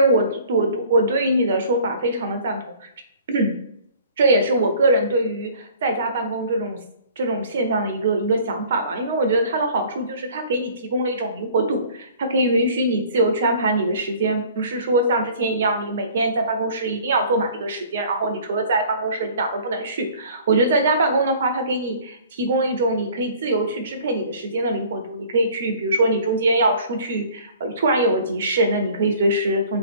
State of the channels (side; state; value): both; inverted; correlation -0.51